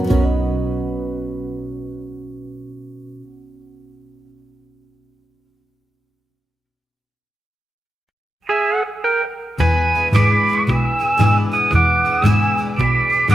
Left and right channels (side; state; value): both; normal; correlation 0.90